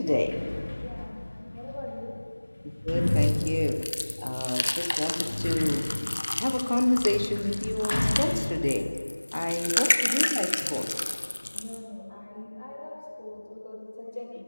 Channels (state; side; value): inverted; both; correlation -1.00